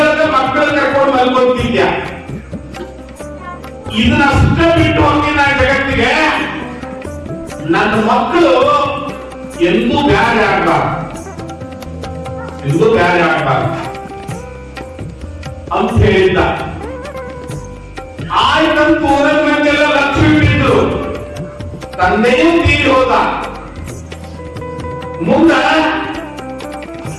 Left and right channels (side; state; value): both; identical; correlation 1.00